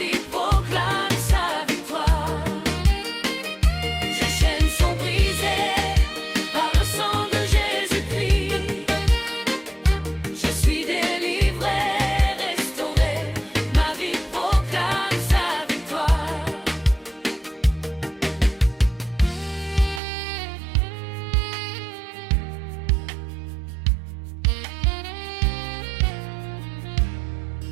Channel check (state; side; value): drops out; left; at 20.0 s